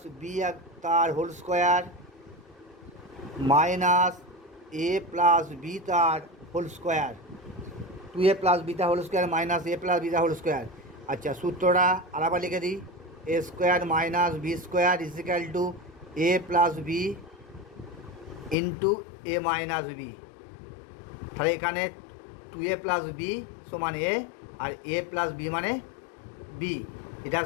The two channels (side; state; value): right; drops out; at 18.6 s